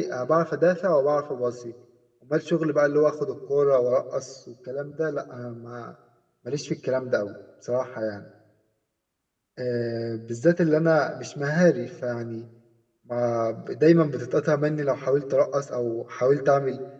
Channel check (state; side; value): identical; both; correlation 1.00